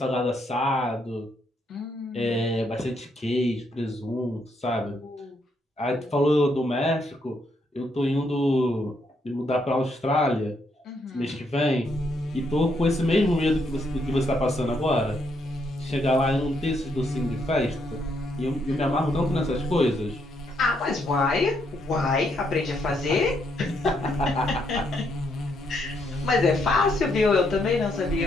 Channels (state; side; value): normal; both; correlation 0.75